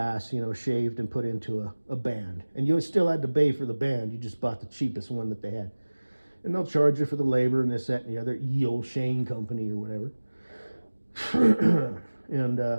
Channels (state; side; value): inverted; both; correlation -1.00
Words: you know, shaved and put into a band. And you still had to pay for the band. You just bought the cheapest one that they had. And they'll charge you for the labor and this, that, and the other. Yale Shane Company or whatever. And